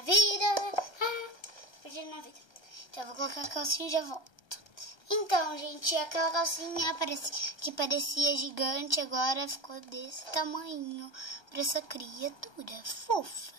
Então, eu vou colocar a calcinha e já volto. Então, gente, aquela calcinha que parecia gigante, agora ficou desse tamanho para essa criatura fofa,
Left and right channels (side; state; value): right; late; 1.3 ms